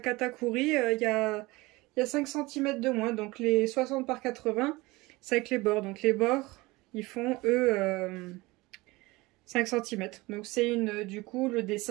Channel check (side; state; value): left; quieter; 21.9 dB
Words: il y a 5 cm de moins. Donc les 60 par 80, c'est avec les bords. Donc les bords, ils font, eux, 5 cm. Donc c'est une... Du coup, le